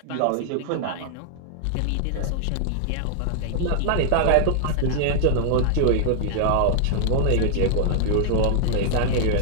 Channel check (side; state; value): both; different; correlation -0.01